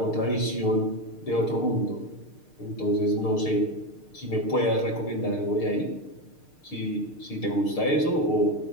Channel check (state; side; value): late; right; 6.6 ms